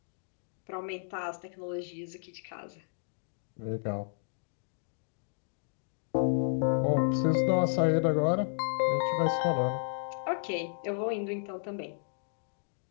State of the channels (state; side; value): silent; right; digital silence